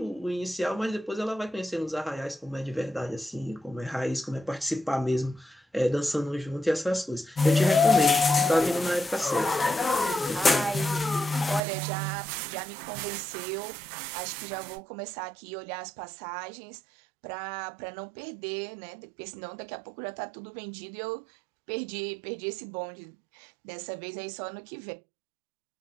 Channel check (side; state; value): left; drops out; at 11.6 s